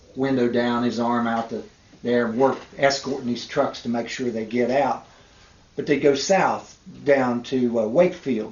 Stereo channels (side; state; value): both; identical; correlation 1.00